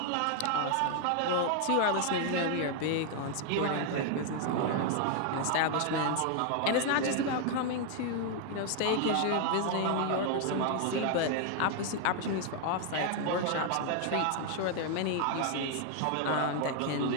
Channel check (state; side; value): different; both; correlation 0.00